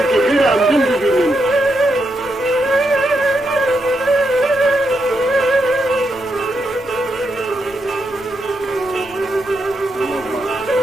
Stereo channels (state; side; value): noise; left; rumble, 25 dB below the sound